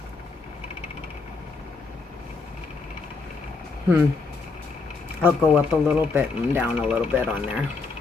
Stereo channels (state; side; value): quieter; right; 4.3 dB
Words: I'll go up a little bit and down a little bit on there.